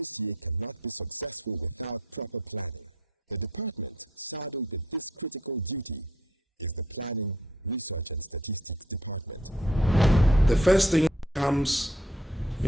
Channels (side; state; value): both; normal; correlation 0.63